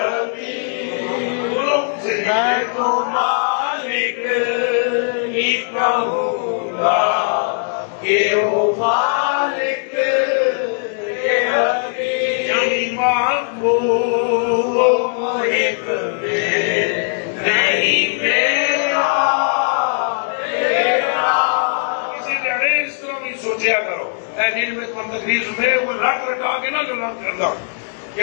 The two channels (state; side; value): silent; right; 63 dB below the other